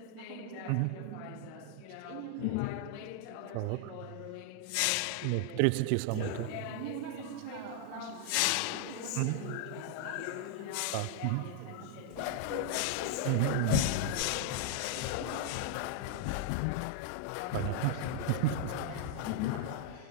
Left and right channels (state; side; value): different; both; correlation 0.00